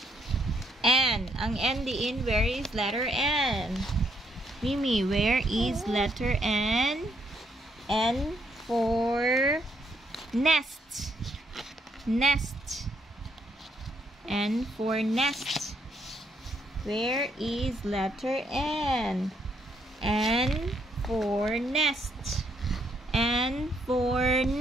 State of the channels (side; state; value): both; normal; correlation 0.73